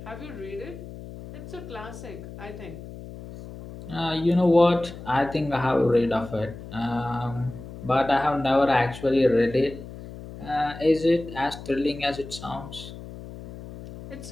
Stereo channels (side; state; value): left; noise; hum, 13 dB below the sound